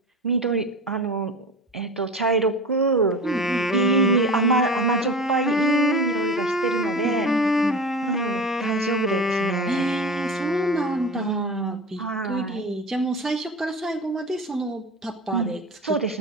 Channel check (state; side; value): normal; both; correlation 0.31